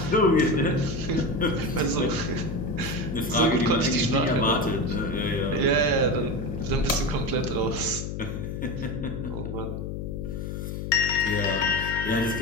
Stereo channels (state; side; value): noise; left; hum, 5 dB below the sound